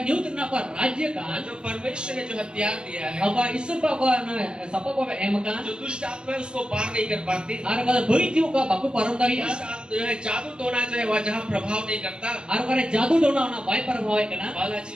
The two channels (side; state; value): left; late; 0.053 ms